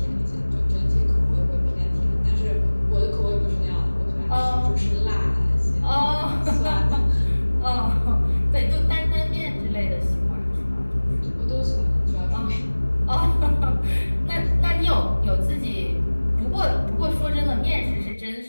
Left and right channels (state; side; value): inverted; both; correlation -1.00